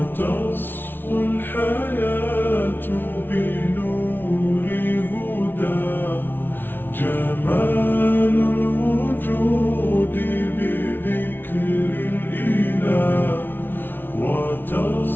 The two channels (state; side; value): late; right; 0.099 ms